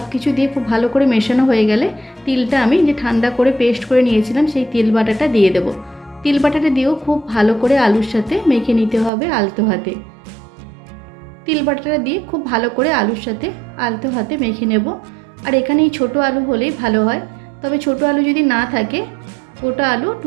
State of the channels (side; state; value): left; drops out; at 9.1 s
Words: কিছু দিয়ে খুব ভালো করে মেশানো হয়ে গেলে তিলটা আমি যে ঠান্ডা করে পেস্ট করে নিয়েছিলাম সেই তিল বাটাটা দিয়ে দেব। তিল বাটাটা দিয়েও খুব ভালো করে আলুর সাথে মেখে নিতে হবে আলতো হাতে। তিল বাটাটা দিয়ে খুব ভালো করে আলুর সাথে আলতো হাতে মেখে নেব। আর এখানে এই ছোটো আলু হলেই ভালো হয়। তবে ছোটো আলু যদি না থাকে গোটা আলু